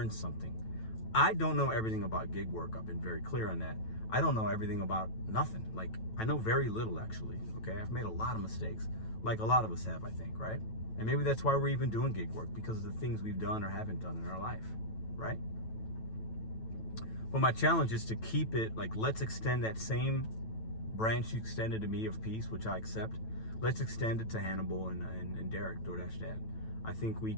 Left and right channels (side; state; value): right; late; 9.1 ms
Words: something. I don't know everything about gig work. I've been very clear on that. I don't know everything about nothing. Like, I know very little, actually, okay? I've made a lot of mistakes, like a lot of us have, I think, right? And maybe that's why we're even doing gig work, because of the things we've done or haven't done in our life, right? But my challenge is to keep it, like, let's extend that same branch you extended to me of peace, which I accept. Let's extend it to Hannibal and Derek, Doordash Dad. I think we